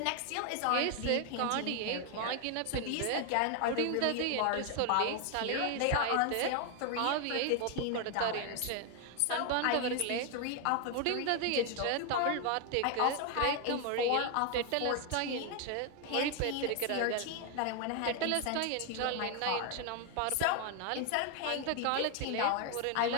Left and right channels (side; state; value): both; different; correlation 0.01